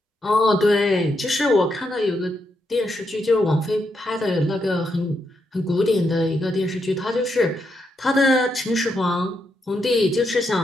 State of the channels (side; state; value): both; normal; correlation 0.81